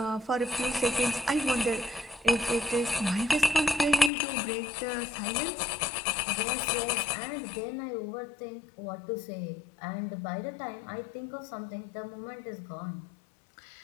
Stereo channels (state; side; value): drops out; right; at 4.1 s